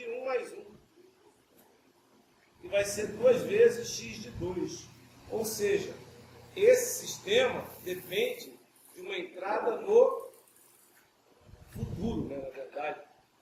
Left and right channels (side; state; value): both; identical; correlation 1.00